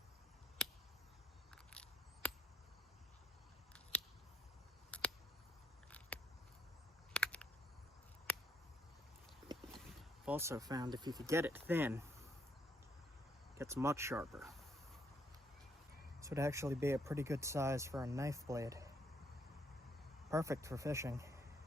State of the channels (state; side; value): normal; both; correlation 0.72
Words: I've also found if you could get it thin, it gets much sharper. This would actually be a pretty good size for a knife blade. Perfect for fishing.